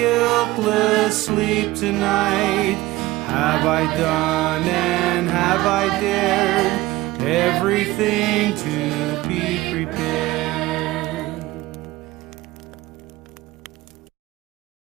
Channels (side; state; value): left; quieter; 18.3 dB